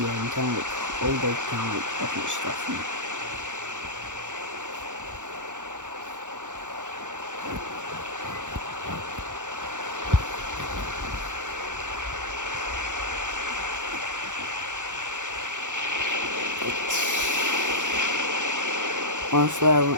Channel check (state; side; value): late; left; 0.86 ms